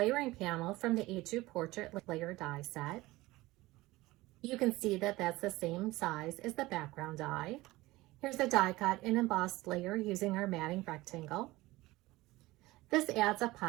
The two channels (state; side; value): quieter; left; 19.3 dB